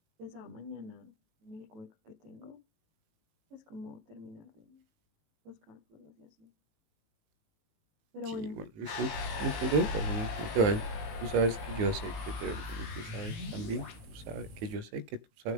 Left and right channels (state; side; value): late; left; 19 ms